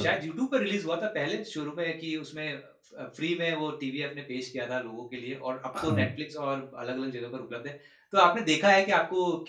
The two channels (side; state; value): both; identical; correlation 1.00